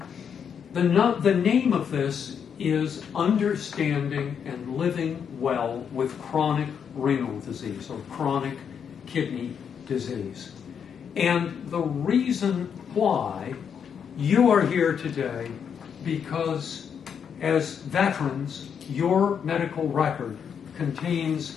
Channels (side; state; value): right; quieter; 7.4 dB